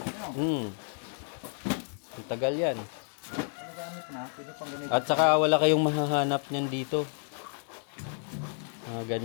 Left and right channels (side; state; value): right; silent; 57 dB below the other